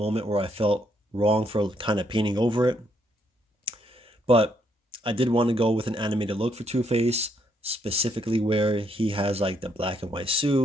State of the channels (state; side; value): normal; both; correlation 0.73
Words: where I felt wrong for kind of painting over it. But I did want to go with an animated look for Two-Face, specifically where he has like the black and white